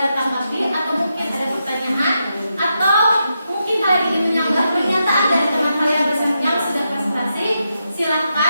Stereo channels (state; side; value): inverted; both; correlation -0.85